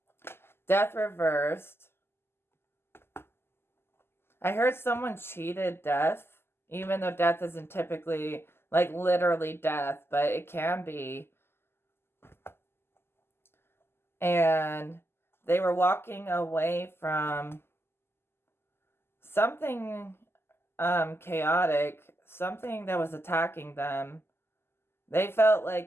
Death reversed. I heard someone cheated death. Even though death isn't typically, like, literally death, but it can be. And they were walking away from something chaotic, something that was attacking them. They felt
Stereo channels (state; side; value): late; right; 0.12 ms